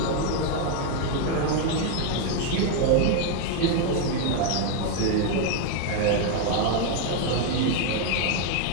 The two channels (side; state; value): both; different; correlation 0.01